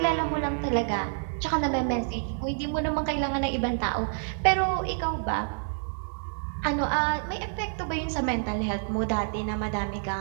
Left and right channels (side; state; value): left; silent; 59 dB below the other